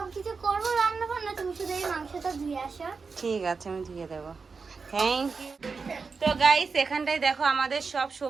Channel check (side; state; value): left; quieter; 4.8 dB